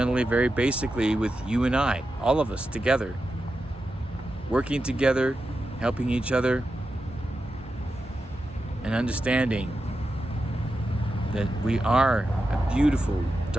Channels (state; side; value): normal; both; correlation 0.90